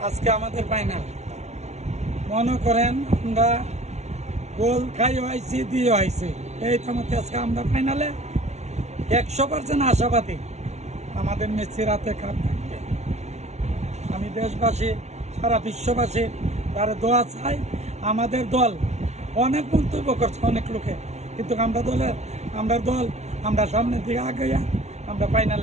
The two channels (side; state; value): left; late; 0.32 ms